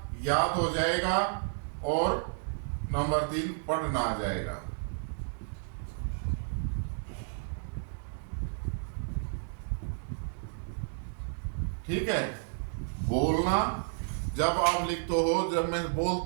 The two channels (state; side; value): silent; left; digital silence